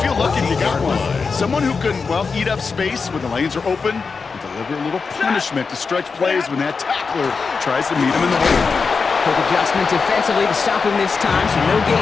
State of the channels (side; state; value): right; quieter; 4.9 dB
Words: lucky if you got one. Someone who can, well, eat up space when the lanes are open and deliver a little punishment to stretch plays when that tackler tries to meet him in the hole. Quick adjustment defensively to stop him this time, so no